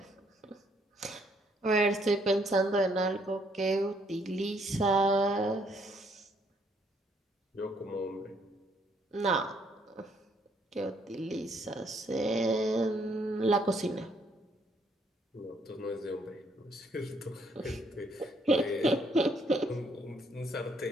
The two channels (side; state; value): both; normal; correlation 0.69